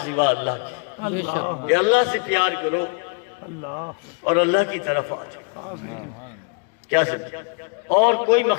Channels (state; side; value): quieter; right; 37.2 dB